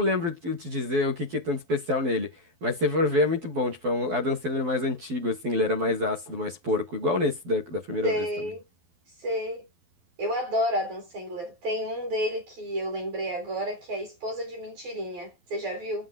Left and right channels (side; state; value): left; late; 12 ms